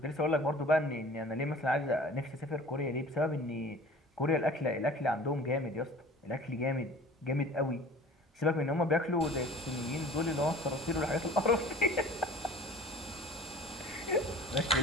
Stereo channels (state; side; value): normal; both; correlation 0.44